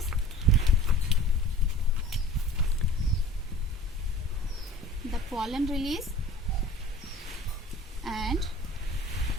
the pollen release and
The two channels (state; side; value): normal; both; correlation 0.44